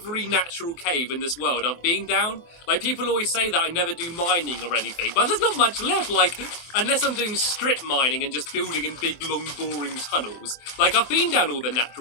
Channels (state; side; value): late; right; 24 ms